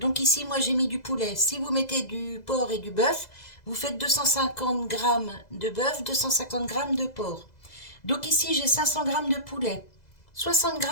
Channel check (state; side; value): late; right; 2.0 ms